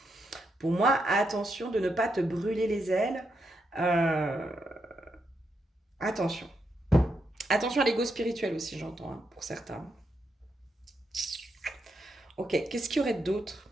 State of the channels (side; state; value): both; normal; correlation 0.82